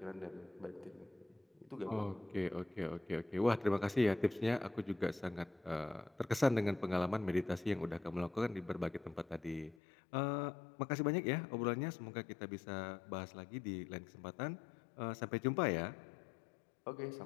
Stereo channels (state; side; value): drops out; right; at 9.8 s